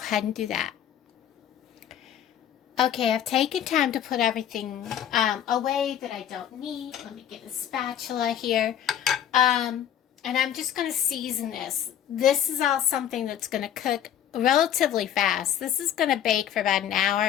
and do that. Okay, I've taken time to put everything away that I don't need. Let me get a spatula here. And I'm just going to season this. This is all something that's going to cook relatively fast. This is going to bake for about an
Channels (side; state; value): right; quieter; 10.2 dB